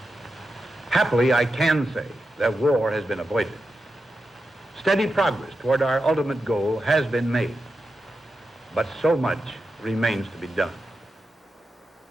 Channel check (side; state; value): both; normal; correlation 0.89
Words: Happily, I can say that war has been avoided. Steady progress toward our ultimate goal has been made, but so much remains to be done.